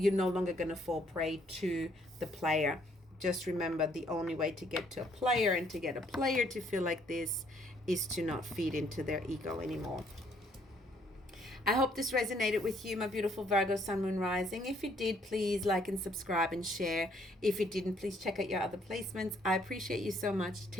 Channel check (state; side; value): normal; both; correlation 0.66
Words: no longer going to fall prey to the player. Just remember, the only way to get to a player and to get a player to feel like this is to not feed into their ego anymore. I hope this resonated with you, my beautiful Virgo Sun, Moon, Rising. If it did, please like and subscribe and share. If it didn't, please check out your other placements. I appreciate you so much.